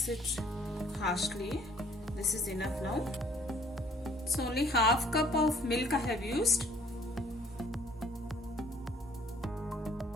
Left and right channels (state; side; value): normal; both; correlation 0.58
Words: it harshly. This is enough now. So only half cup of milk I have used.